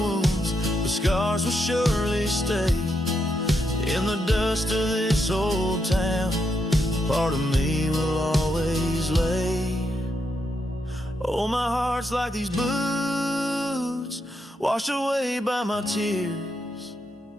but scars will surely stay. In the dust of this old town, part of me will always lay. Oh, my heart's like these boots washed away by my tears,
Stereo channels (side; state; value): both; normal; correlation 0.81